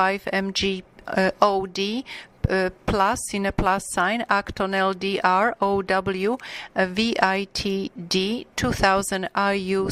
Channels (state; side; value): identical; both; correlation 1.00